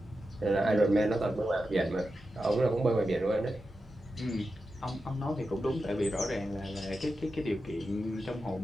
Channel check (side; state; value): both; normal; correlation 0.90